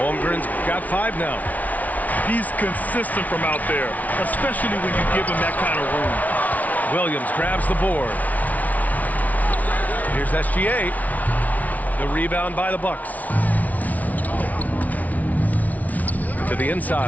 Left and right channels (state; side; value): late; right; 0.073 ms